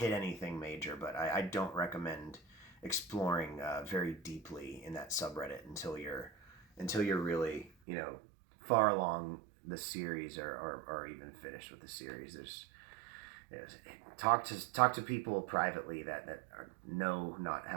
anything major, but I don't recommend exploring very deeply in that subreddit until you're really far along the series or even finished with the series. Talk to people privately that know not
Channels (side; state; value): left; drops out; at 7.7 s